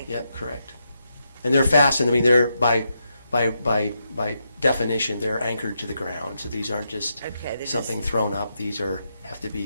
Yep, correct. And they're fastened, I mean, they're by definition, they're anchored to the ground. So these aren't just Okay, they're something just- thrown up. These have to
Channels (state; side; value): inverted; both; correlation -0.83